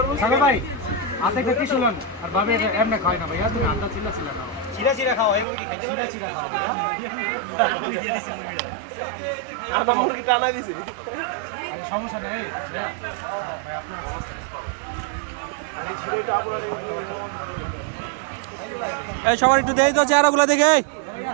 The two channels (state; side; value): drops out; left; at 5.5 s